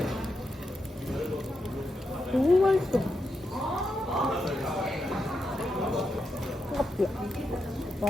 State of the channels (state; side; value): normal; both; correlation 0.85